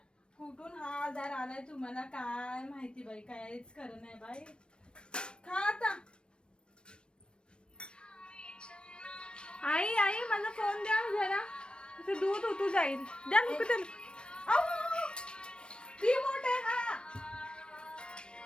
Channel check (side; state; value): right; late; 0.055 ms